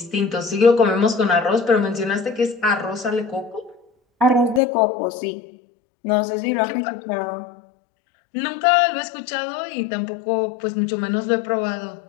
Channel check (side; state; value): right; drops out; at 4.6 s